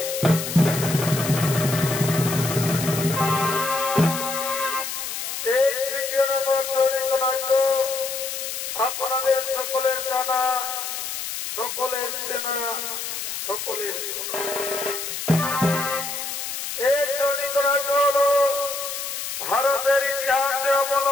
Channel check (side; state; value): left; noise; hiss, 5 dB below the sound